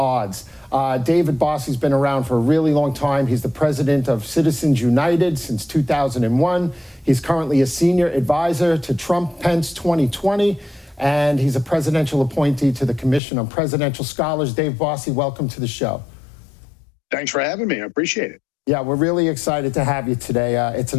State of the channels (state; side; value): drops out; right; at 13.2 s